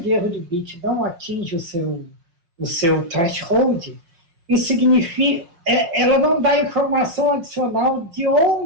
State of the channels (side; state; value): left; late; 5.7 ms